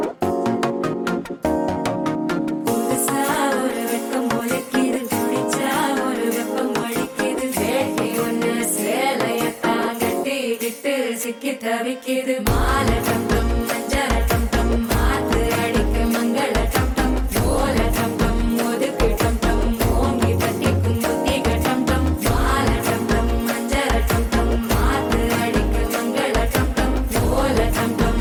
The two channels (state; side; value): identical; both; correlation 1.00